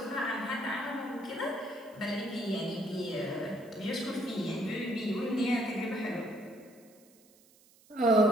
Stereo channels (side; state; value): right; noise; hiss, 28 dB below the sound